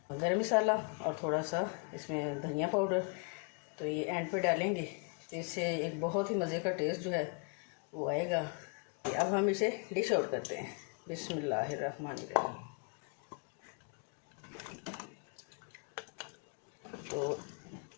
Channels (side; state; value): right; quieter; 36.5 dB